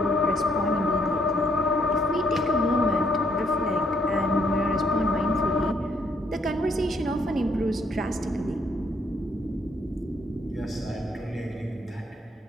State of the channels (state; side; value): normal; both; correlation 0.70